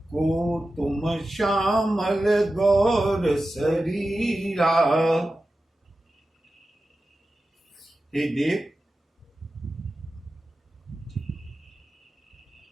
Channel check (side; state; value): both; normal; correlation 0.93